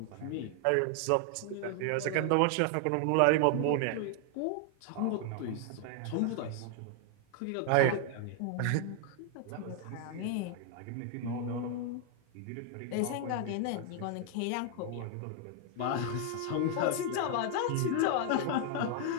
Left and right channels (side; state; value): both; different; correlation 0.00